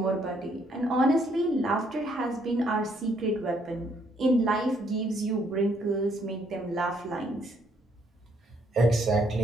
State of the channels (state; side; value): normal; both; correlation 0.69